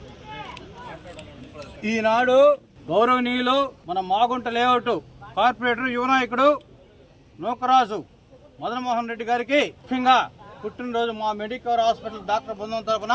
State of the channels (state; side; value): identical; both; correlation 1.00